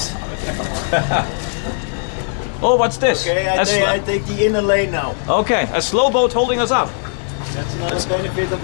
Oh, what's this? Okay, I take the inner lane now. Okay, a slow boat holding us up. That's another benefit of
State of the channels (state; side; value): silent; right; digital silence